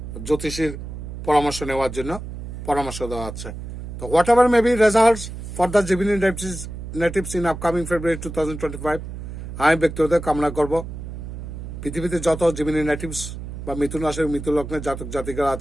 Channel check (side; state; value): right; noise; hum, 9 dB below the sound